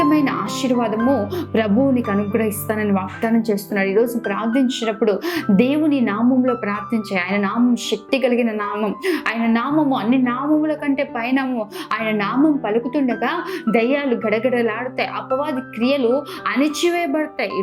ఆశీర్వాదము ప్రభువు నీకు అనుగ్రహిస్తానని వాగ్దానం చేస్తున్నాడు. ఈరోజు ప్రార్థించినప్పుడు దేవుని నామంలో ప్రార్థించే. ఆయన నామం శక్తి కలిగిన నామం. ఆయన నామము అన్ని నామముల కంటే పైనము. ఆయన నామం పలుకుతుండగా దయ్యాలు గడగడలాడుతాయి, అపవాది క్రియలు అణిచివేయబడతాయి.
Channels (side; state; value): both; identical; correlation 1.00